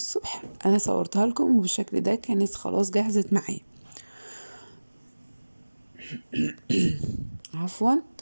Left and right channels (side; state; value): both; inverted; correlation -1.00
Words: انا صورتها لكم وبالشكل ده كانت خلاص جهزت معايا. عفوا.